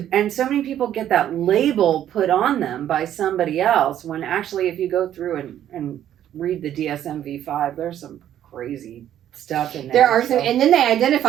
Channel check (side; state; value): left; quieter; 11.1 dB